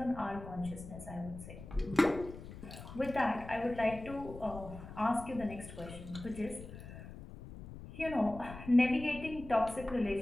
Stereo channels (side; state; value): left; noise; rumble, 13 dB below the sound